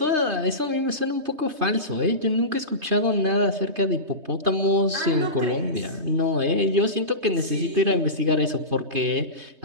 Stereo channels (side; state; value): left; late; 3.2 ms